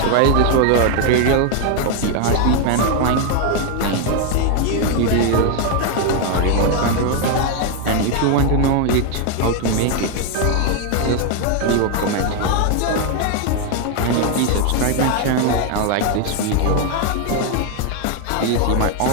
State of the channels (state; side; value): different; both; correlation 0.01